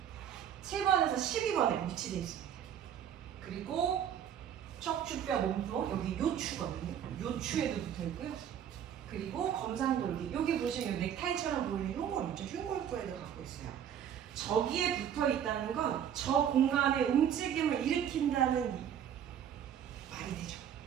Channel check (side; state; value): left; quieter; 9.3 dB